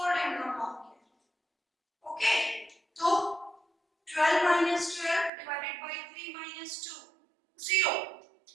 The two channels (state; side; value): drops out; left; at 5.3 s